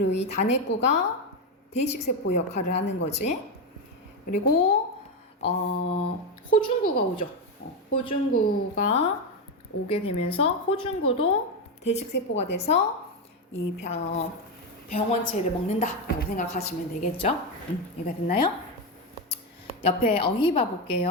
이 단핵구가 대식세포 역할을 하는 거지. 그리고 호중구가 오죠. 호중구가 오게 되면서 호중구도 대식세포가 돼서 이 병원체를 먹는다라고 생각하시면 되겠죠. 이해가 됐나요? 옆에 어휘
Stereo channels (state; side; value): normal; both; correlation 0.10